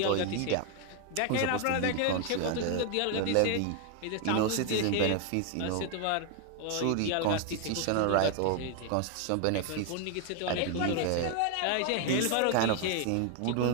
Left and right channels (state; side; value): different; both; correlation 0.00